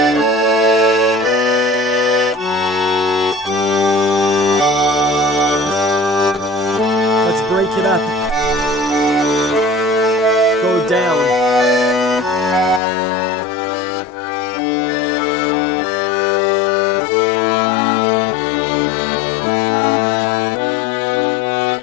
Let's break it up. Go down.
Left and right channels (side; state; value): right; drops out; at 12.8 s